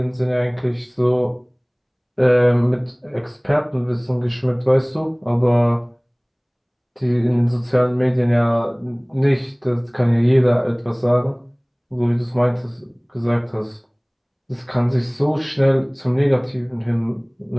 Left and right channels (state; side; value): identical; both; correlation 1.00